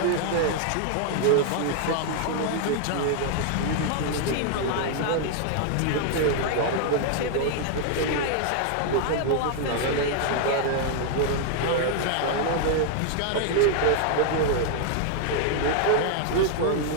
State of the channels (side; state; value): both; different; correlation 0.00